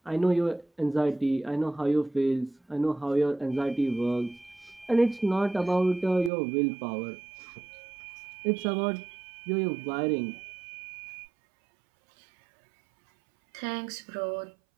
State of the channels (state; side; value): drops out; left; at 6.3 s